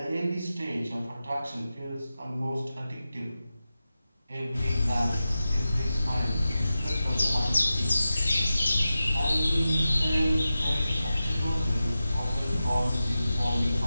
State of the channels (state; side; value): inverted; both; correlation -0.93